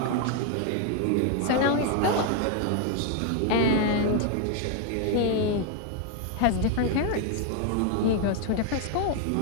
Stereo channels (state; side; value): different; both; correlation 0.01